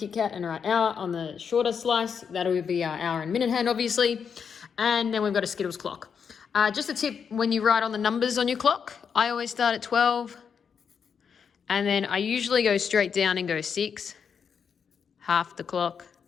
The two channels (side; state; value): right; quieter; 6.8 dB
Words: Kat and write hour on the shorter slice. That'll be our hour and minute hand obviously. And then we've got a Skittles clock. Just a tip, when you write on the numbers on your clock, I always start at 12 and then I usually go straight down and go 6. Half the clock,